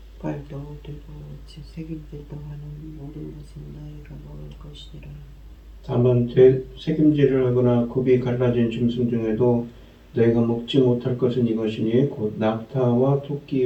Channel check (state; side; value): identical; both; correlation 1.00